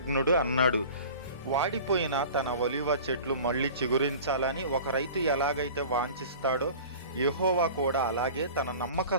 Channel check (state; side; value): inverted; both; correlation -0.41